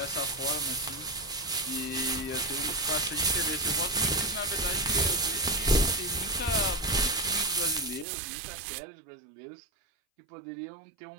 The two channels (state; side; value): drops out; left; at 8.1 s